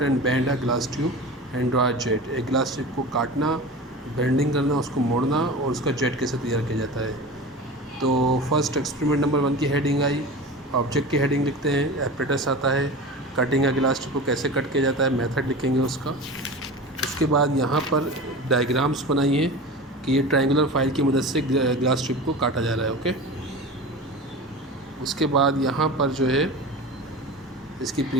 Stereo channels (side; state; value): both; normal; correlation 0.32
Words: and bend a glass tube and draw a jet. एक ग्लास ट्यूब को काटना, बेंडिंग करना, उसको मोड़ना और उसका जेट कैसे तैयार किया जाता है। तो फर्स्ट एक्सपेरिमेंट नंबर 1 की हेडिंग आई, ऑब्जेक्ट की हेडिंग लिखते हैं, एपरेटस आता है, कटिंग अ ग्लास ट्यूब को कैसे कट किया जाता है, मेथड लिखेंगे उसका। उसके बाद यहाँ पर डायग्राम्स बनाइए कि ये ट्रायंगुलर फाइल की मदद से ग्लास ट्यूब को काटा जा रहा है। ओके, उसके बाद यहाँ पर जो है इसकी